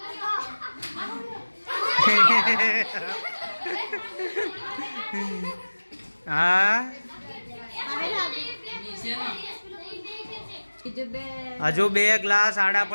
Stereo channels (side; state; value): both; inverted; correlation -1.00